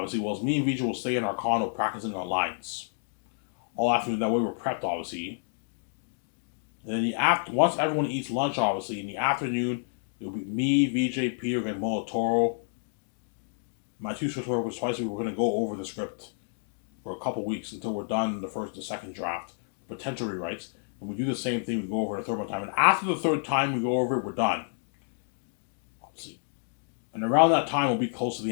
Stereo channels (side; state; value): right; silent; digital silence